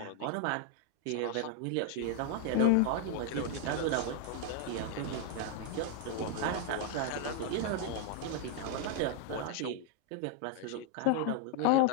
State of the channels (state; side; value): different; both; correlation 0.00